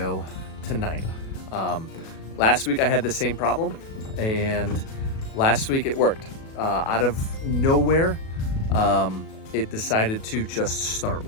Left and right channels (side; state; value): right; late; 37 ms